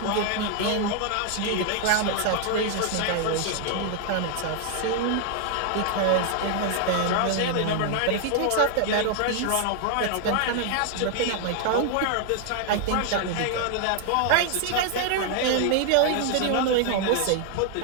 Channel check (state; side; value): different; both; correlation 0.00